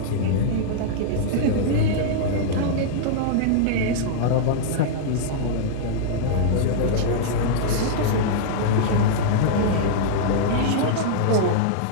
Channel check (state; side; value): different; both; correlation -0.02